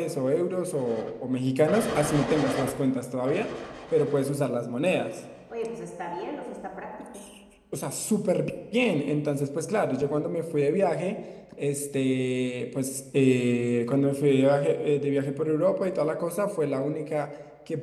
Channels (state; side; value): identical; both; correlation 1.00